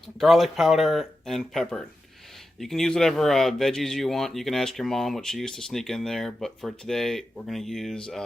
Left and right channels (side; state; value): both; normal; correlation 0.91